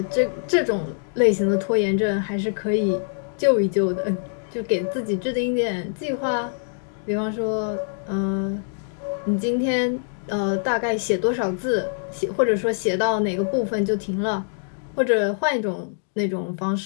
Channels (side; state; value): right; silent; digital silence